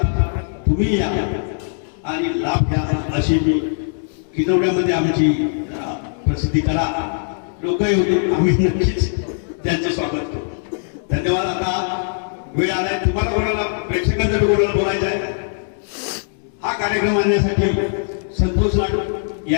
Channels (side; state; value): right; silent; digital silence